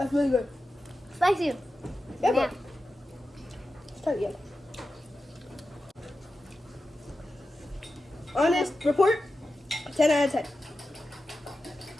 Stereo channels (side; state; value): both; normal; correlation 0.92